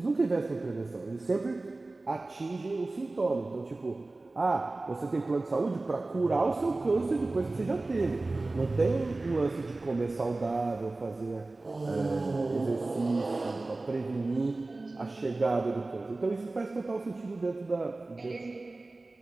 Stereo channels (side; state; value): left; quieter; 3.2 dB